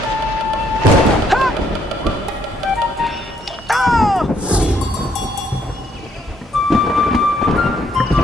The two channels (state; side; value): normal; both; correlation 0.69